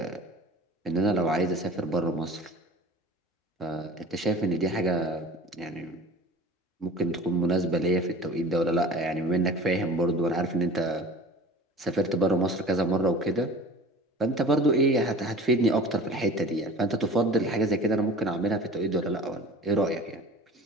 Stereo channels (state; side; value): normal; both; correlation 0.41